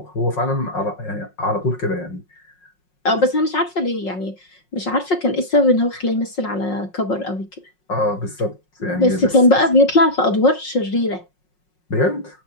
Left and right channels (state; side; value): late; right; 5.5 ms